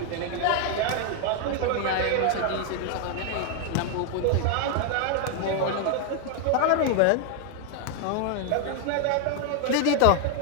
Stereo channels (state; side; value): different; both; correlation 0.00